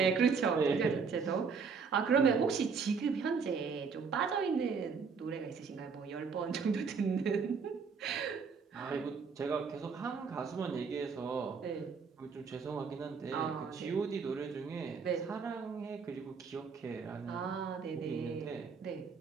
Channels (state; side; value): quieter; left; 5.5 dB